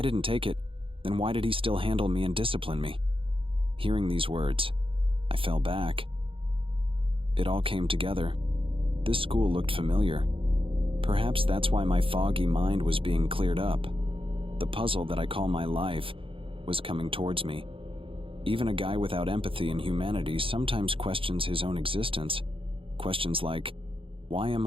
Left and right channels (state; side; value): late; left; 0.26 ms